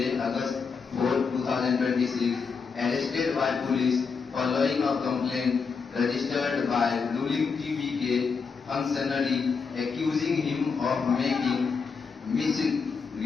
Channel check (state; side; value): quieter; right; 5.3 dB